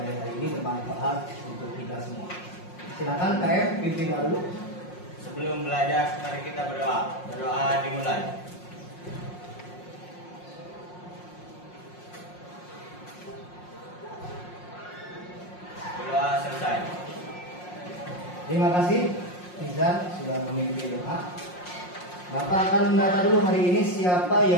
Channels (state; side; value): late; right; 5.6 ms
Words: hari ini bermanfaat untuk kita semua. Silakan KM pimpin doa dulu. Sebelum belajar, mari kita berdoa. Berdoa dimulai. Berdoa selesai. Terima kasih Nizar sudah memimpin doa. Bapak akan mendata dulu hari ini siapa